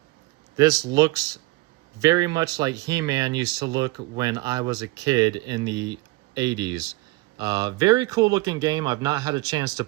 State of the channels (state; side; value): quieter; left; 21.2 dB